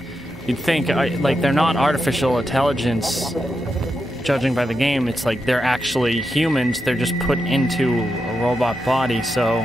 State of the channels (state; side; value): normal; both; correlation 0.86